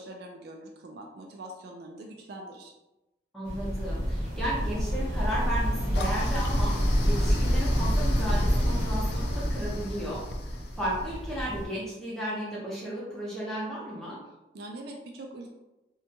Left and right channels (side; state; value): both; normal; correlation 0.82